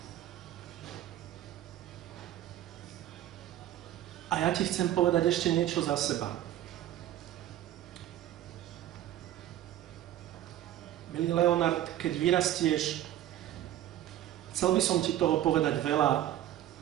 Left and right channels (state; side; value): quieter; left; 12.7 dB